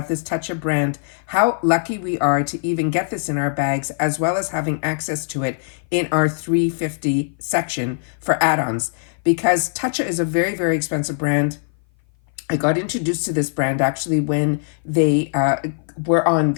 this Toucha brand, how lucky we are to even get this in our bags, as well as having access to it in our $3.50 section for add-ons. Because Toucha is a very, very expensive brand. I got introduced to this brand actually when they were on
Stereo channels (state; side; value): silent; right; 57 dB below the other